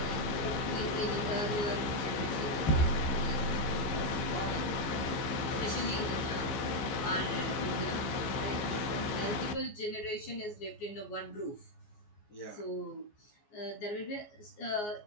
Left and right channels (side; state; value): right; late; 14 ms